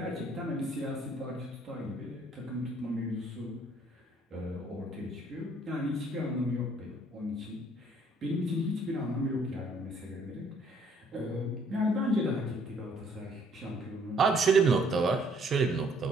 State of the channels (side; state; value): both; normal; correlation 0.63